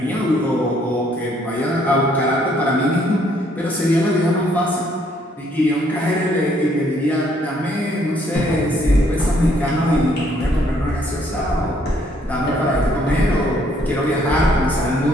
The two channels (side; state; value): both; normal; correlation 0.67